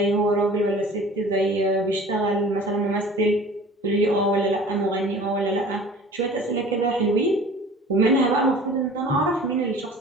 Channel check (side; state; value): both; normal; correlation 0.44